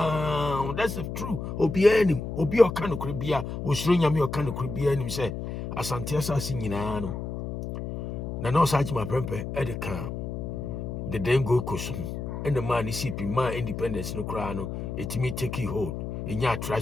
that's true. Obi o kan kribia o shronya me o kan kribia nim say Asante assassin na no such my prempe at the camp. The then go cushion. And the man is sipping my independence no crown, it me take hold in your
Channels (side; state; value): left; noise; hum, 5 dB below the sound